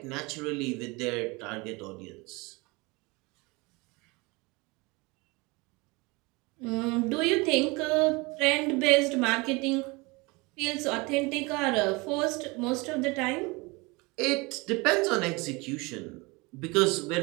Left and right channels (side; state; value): left; quieter; 25.7 dB